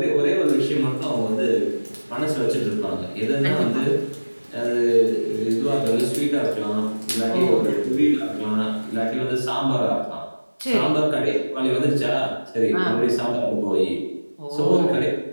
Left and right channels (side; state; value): both; inverted; correlation -1.00